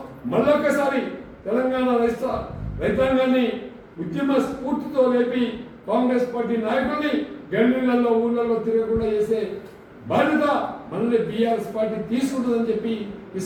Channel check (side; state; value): both; identical; correlation 1.00